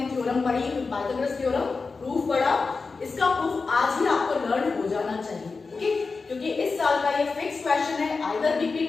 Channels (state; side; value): quieter; right; 4.3 dB